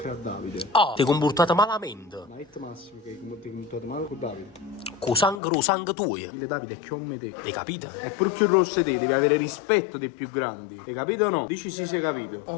a Davide. Ah, ti hai comportato malamente. Ma è Massimo che ti hai comportato male con Davide. Con sangue tuo. Il Davide è come te. Hai capito? È pure più rosso di te, devi avere rispetto dei più grandi. Hai capito o no? Dici sì, sei capito.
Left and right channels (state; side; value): drops out; right; at 5.4 s